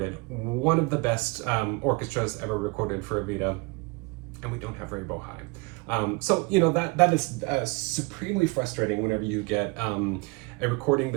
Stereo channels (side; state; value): left; quieter; 27.0 dB